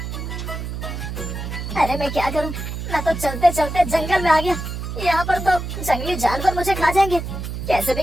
अरे मैं क्या करूं, मैं तो चलते चलते जंगल में आ गया। यहाँ पर तो जंगली जानवर मुझे खा जाएंगे। कैसे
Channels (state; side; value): noise; right; hum, 6 dB below the sound